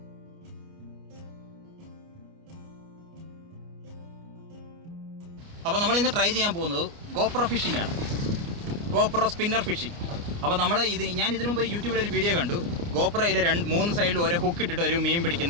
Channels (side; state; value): left; late; 29 ms